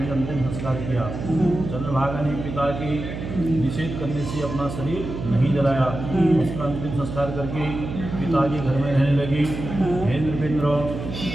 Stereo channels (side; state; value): right; noise; hum, 7 dB below the sound